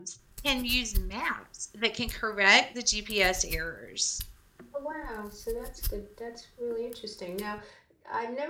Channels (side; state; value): both; identical; correlation 1.00